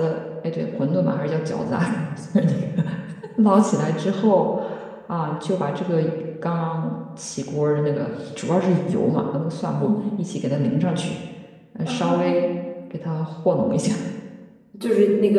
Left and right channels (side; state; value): both; identical; correlation 1.00